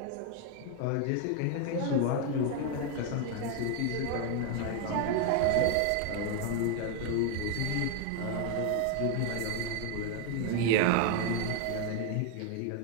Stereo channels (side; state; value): both; different; correlation 0.01